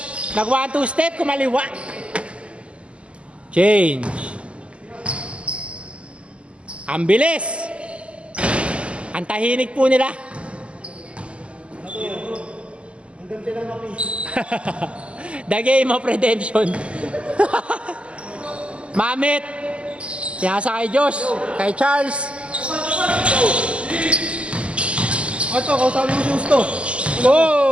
Nag 1-2 step, kumaliwa. Change. Ang bilis. Ang tahinig po nila. The game of redemption. Mamit. Pinasa kay Josh. Kay Charles. Ito, kausapin mo si Justo.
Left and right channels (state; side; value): late; left; 0.056 ms